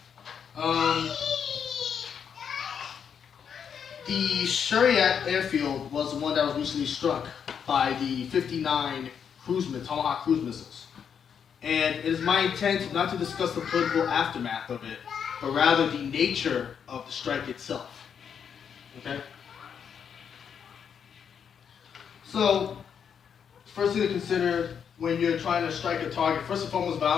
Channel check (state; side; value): quieter; right; 7.5 dB